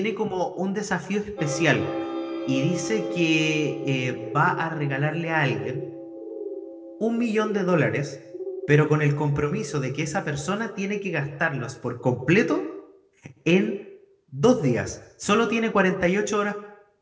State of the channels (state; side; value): identical; both; correlation 1.00